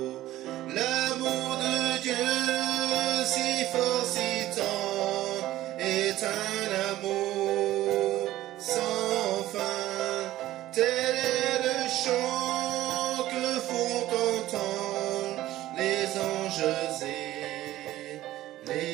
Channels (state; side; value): quieter; left; 15.0 dB